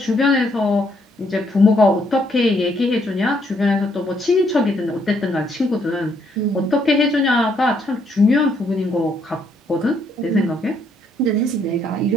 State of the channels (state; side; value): normal; both; correlation 0.71